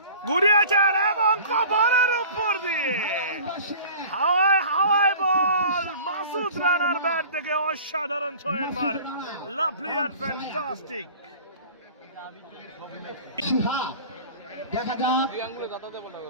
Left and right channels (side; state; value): both; inverted; correlation -0.43